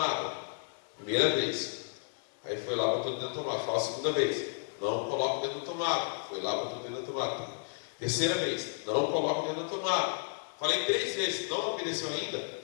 Primeira vez. Aí foi lá, botou o dedo na tomada. Fala a segunda vez. Não coloca o dedo na tomada. Foi lá, botou o dedo na tomada. Terceira vez. Não coloca o dedo na tomada. Falei 3 vezes. Não obedeceu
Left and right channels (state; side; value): silent; right; 56 dB below the other